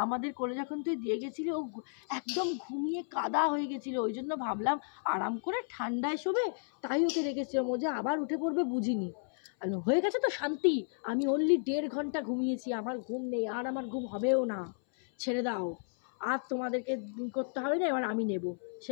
আমাদের কোলে যখন তুই দিয়ে গেছিলি ও একদম ঘুমিয়ে কাদা হয়ে গেছিলো, ওই জন্য ভাবলাম আরাম করে ঠান্ডায় শোবে, তাই ওকে রেখেছিলাম, ও যে আবার উঠে পড়বে বুঝিনি। হয়ে গেছে তো শান্তি, আমি অনলি 1.5 ঘন্টা ঘুমিয়েছি, আমার ঘুম নেই, আর আমার ঘুম হবেও না, ছেড়ে দাও, আর তোমাদেরকে করতে হবে না, এবার আমি নেব।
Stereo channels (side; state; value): right; silent; 56 dB below the other